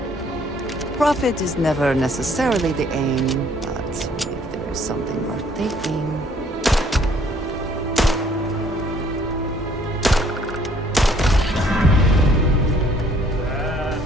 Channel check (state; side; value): normal; both; correlation 0.61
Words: Profit is never necessarily the aim, but if there is something worth taking.